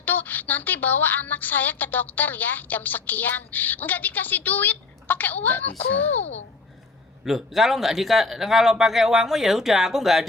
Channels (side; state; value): right; quieter; 3.8 dB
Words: tuh nanti bawa anak saya ke dokter ya jam sekian. Nggak dikasih duit, pakai uangku. Loh, kalau pakai uangmu ya udah, aku nggak